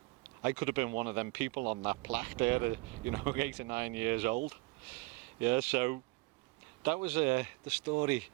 could have been one of them people on that plaque there, 8 or 9 years old. Yeah, so that was the story.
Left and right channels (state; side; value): quieter; left; 25.1 dB